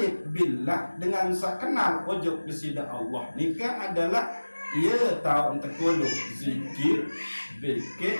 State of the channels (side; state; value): both; inverted; correlation -1.00